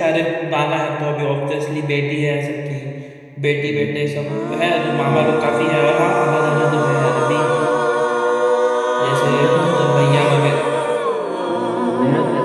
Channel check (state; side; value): identical; both; correlation 1.00